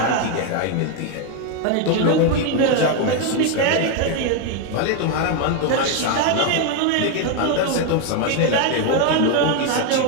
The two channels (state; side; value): different; both; correlation 0.01